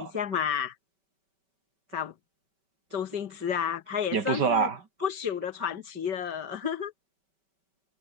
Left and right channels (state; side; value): late; left; 5.2 ms